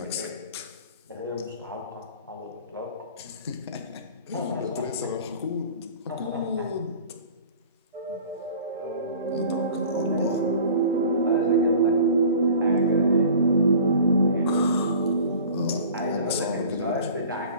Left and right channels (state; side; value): inverted; both; correlation -0.44